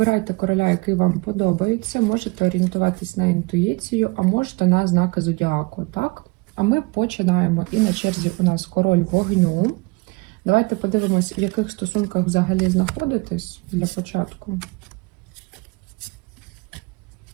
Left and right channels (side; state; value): left; quieter; 26.0 dB